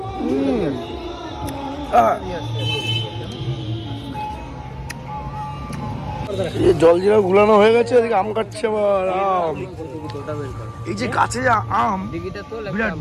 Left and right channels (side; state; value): both; identical; correlation 1.00